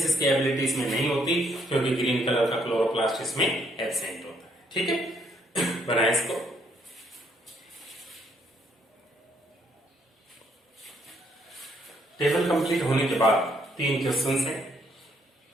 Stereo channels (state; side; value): normal; both; correlation 0.70